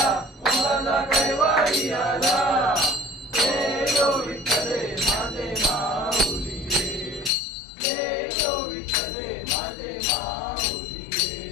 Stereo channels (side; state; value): right; drops out; at 7.3 s